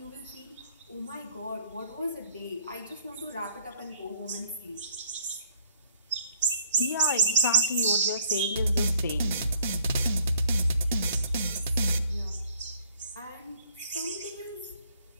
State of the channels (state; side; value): inverted; both; correlation -0.61